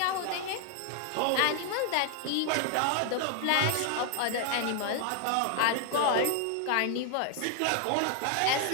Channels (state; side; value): different; both; correlation 0.00